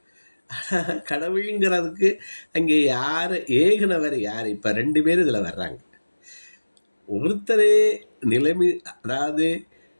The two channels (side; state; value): both; inverted; correlation -1.00